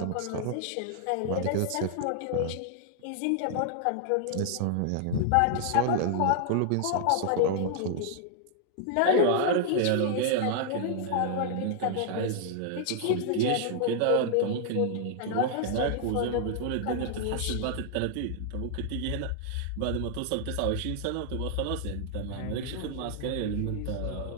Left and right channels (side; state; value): both; different; correlation -0.01